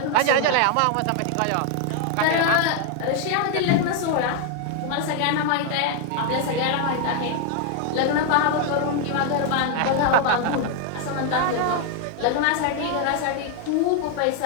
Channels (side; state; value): both; different; correlation 0.00